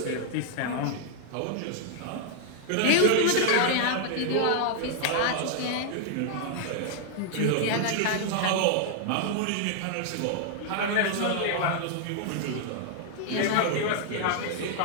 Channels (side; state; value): both; different; correlation 0.00